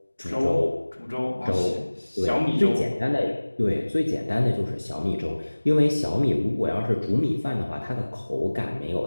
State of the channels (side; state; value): both; inverted; correlation -1.00